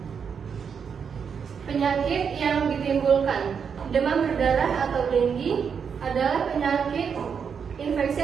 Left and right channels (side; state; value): left; quieter; 6.7 dB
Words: Penyakit yang ditimbulkan demam berdarah atau dengue adalah penyakit infeksi